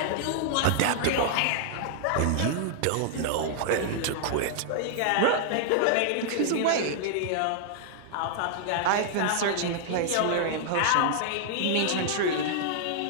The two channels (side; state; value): both; different; correlation -0.01